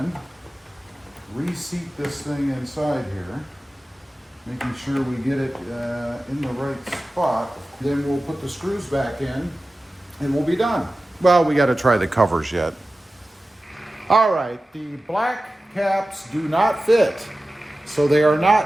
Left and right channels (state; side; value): normal; both; correlation 0.95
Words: reseat this thing inside here, making sure we get it in the right spot. Then we'll put the screws back in and we'll be done. Well, we got to try the covers yet. All right, the black caps do not fit, so they are